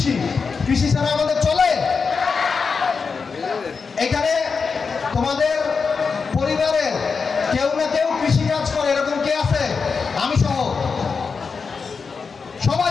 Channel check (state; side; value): quieter; right; 5.2 dB